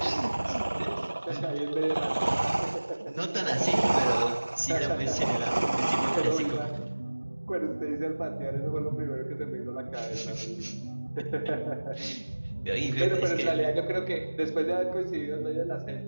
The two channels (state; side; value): inverted; both; correlation -1.00